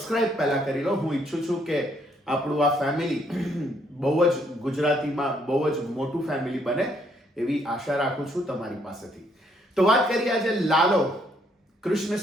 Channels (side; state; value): both; normal; correlation 0.70